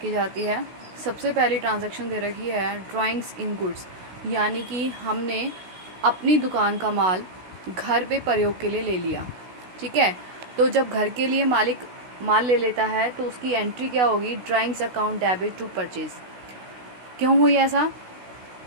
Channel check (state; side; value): late; left; 16 ms